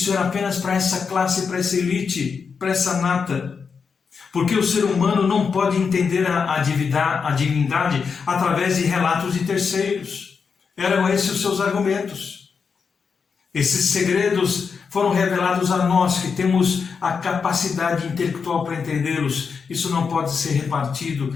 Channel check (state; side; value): quieter; right; 5.7 dB